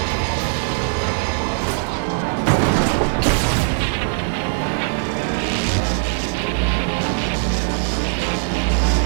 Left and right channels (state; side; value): silent; left; digital silence